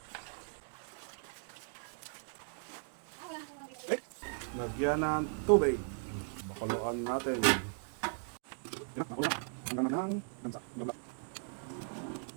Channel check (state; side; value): silent; left; 53 dB below the other